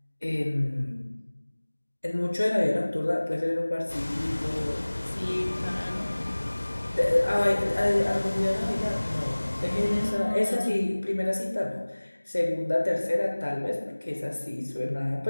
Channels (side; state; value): both; inverted; correlation -1.00